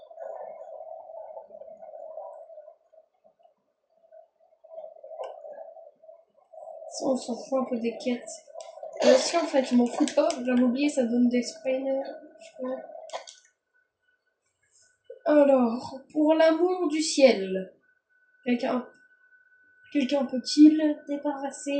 Ça, on s'en fout un peu des quêtes. Si en fait, je m'en fous pas, j'avais oublié, ça donne des spines. Je crois. Alors, pour l'amour du ciel, quelqu'un peut-il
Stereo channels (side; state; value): both; identical; correlation 1.00